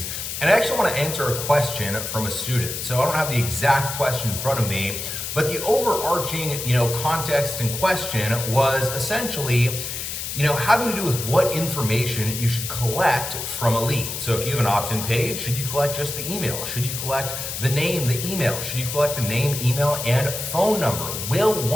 And I actually want to answer a question from a student. So I don't have the exact question in front of me, but the overarching, context and question was essentially, having to do with what information you should collect from a lead. So if you have an opt-in page, should you collect just the email? Should you collect the name, the email? Should you collect the name, email, and phone number? Will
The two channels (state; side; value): noise; left; hiss, 5 dB below the sound